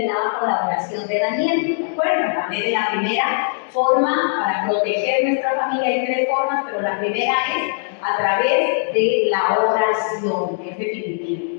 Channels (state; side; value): silent; right; digital silence